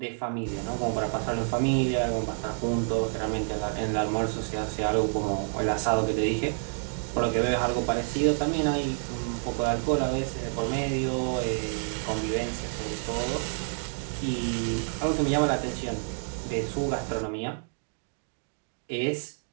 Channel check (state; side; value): silent; left; 59 dB below the other